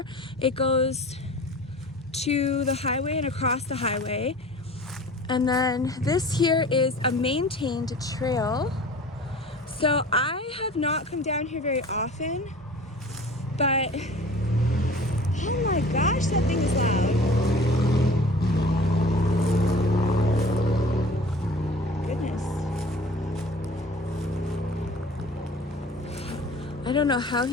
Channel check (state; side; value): normal; both; correlation 0.43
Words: It goes to the highway and across the highway. And then this here is a maintained trail. So I have not come down here very often, but oh my gosh, that thing is loud. Goodness. I don't know how